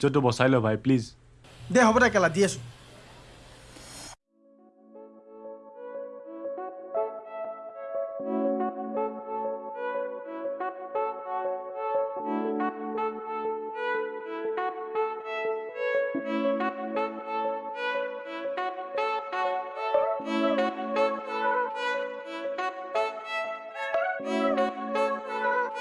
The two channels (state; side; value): identical; both; correlation 1.00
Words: বচাই ল ভাই প্লিজ দে হ'ব দে কেলা দি আছো